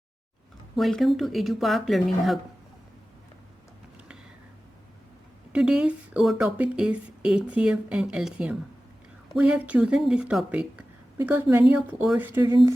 Welcome to EduPark Learning Hub. Today's our topic is HCF and LCM. We have chosen this topic because many of our students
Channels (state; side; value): normal; both; correlation 0.95